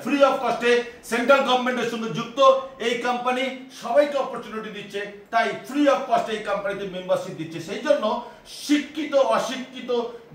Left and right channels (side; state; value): both; identical; correlation 1.00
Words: ফ্রি অফ কস্টে। সেন্ট্রাল গভর্নমেন্টের সঙ্গে যুক্ত এই কোম্পানি, সবাইকে অপরচুনিটি দিচ্ছে, তাই ফ্রি অফ কস্টে এই কোম্পানিতে মেম্বারশিপ দিচ্ছে। সেই জন্য শিক্ষিত অশিক্ষিত